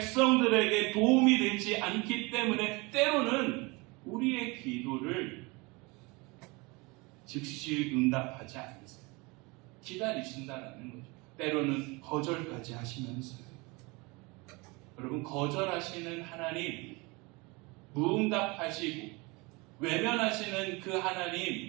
도움이 되지 않기 때문에 때로는 우리의 기도를 즉시 응답하지 않으세요. 기다리신다라는 거죠. 때로는 거절까지 하시면서요. 여러분, 거절하시는 하나님, 무응답하시고 외면하시는 그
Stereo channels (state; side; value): quieter; left; 26.2 dB